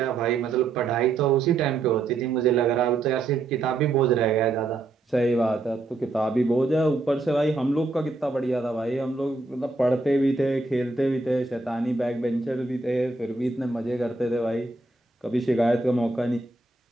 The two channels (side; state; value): left; quieter; 3.5 dB